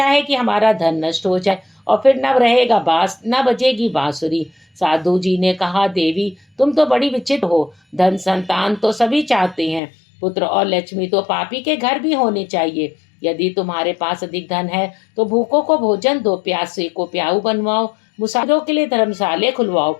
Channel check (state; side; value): drops out; right; at 9.8 s